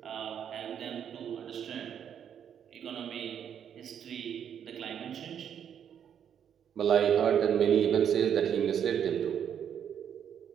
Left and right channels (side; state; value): left; quieter; 8.7 dB